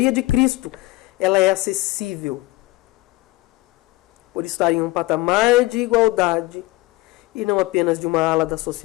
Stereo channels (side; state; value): right; quieter; 20.1 dB